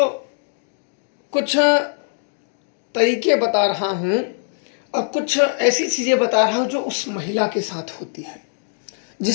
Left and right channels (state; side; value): silent; right; digital silence